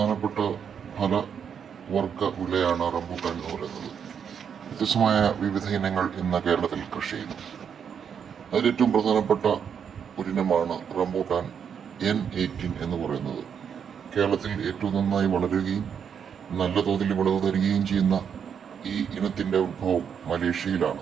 ഫലവർഗ വിളയാണ് റംബൂട്ടാൻ എന്ന് പറയുന്നത്. വ്യത്യസ്തമായ വിവിധ ഇനങ്ങൾ ഇന്ന് കേരളത്തിൽ കൃഷി ചെയ്യുന്നു. അതിലേറ്റവും പ്രധാനപ്പെട്ട ഒരിനമാണ് റംബൂട്ടാൻ N18 എന്ന് പറയുന്നത്. കേരളത്തിൽ ഏറ്റവും നന്നായി വളരുകയും നല്ല തോതിൽ വിളവ് തരികയും ചെയ്യുന്ന ഈ ഇനത്തിൻ്റെ ഉത്ഭവം മലേഷ്യയിലാണ്.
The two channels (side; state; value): left; quieter; 7.5 dB